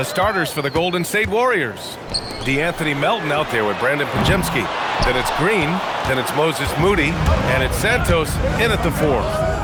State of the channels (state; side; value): identical; both; correlation 1.00